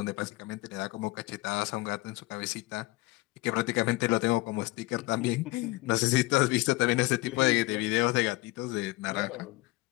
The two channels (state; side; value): quieter; right; 20.8 dB